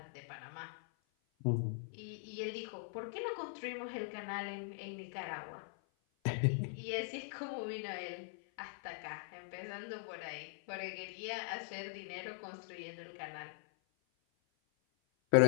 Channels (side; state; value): right; silent; 50 dB below the other